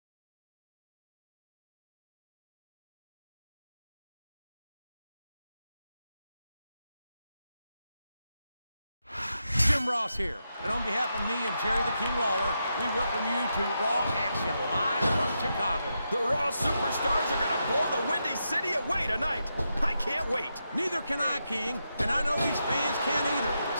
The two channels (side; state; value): both; inverted; correlation -0.85